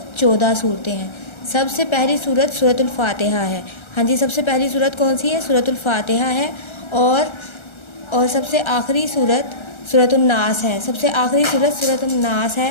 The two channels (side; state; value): right; late; 1.3 ms